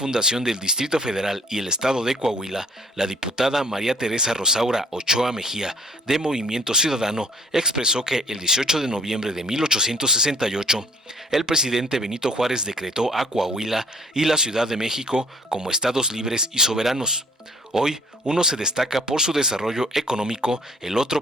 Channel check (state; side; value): normal; both; correlation 0.56